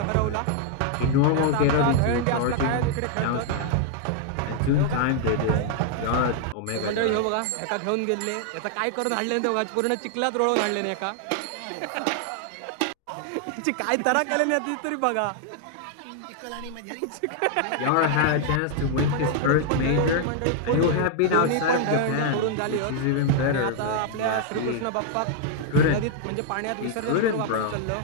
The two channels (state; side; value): different; both; correlation 0.00